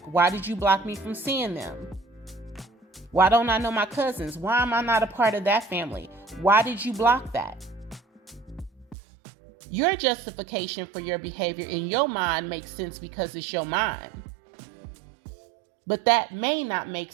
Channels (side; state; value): left; drops out; at 9.0 s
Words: Why did you block me from seeing them? Why don't I know my cousins? Why am I not a part of that family? Why did you block that? Your justification for your behavior in your mind makes sense because it's your mind. But that may not make